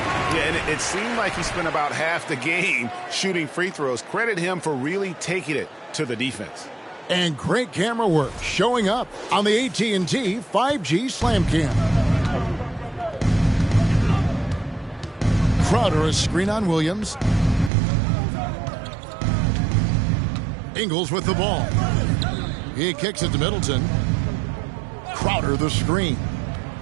Yeah, and it seemed like he spent about half the game shooting free throws. Credit him for really taking it to the defense. And great camera work showing up on the AT&T 5G Slam Cam. Crowder, a screen on Williams. Ingles with the ball. He kicks it to Middleton. Crowder the screen.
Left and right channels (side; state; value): left; drops out; at 17.7 s